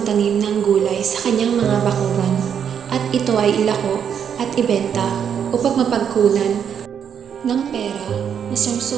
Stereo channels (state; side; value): quieter; left; 8.0 dB